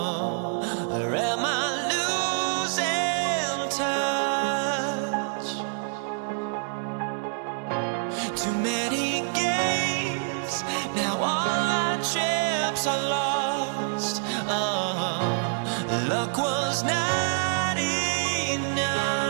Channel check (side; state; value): left; silent; 60 dB below the other